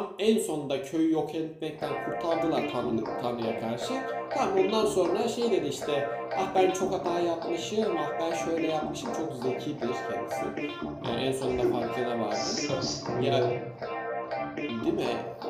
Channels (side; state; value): both; identical; correlation 1.00